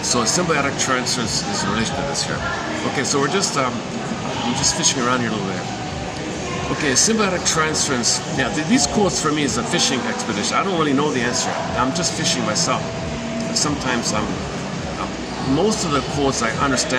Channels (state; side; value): identical; both; correlation 1.00